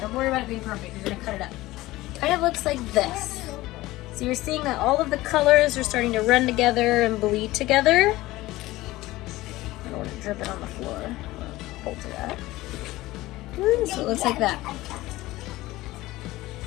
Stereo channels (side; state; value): right; quieter; 18.0 dB